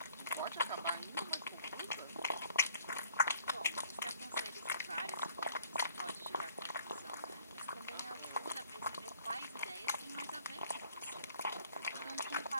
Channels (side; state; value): both; inverted; correlation -0.58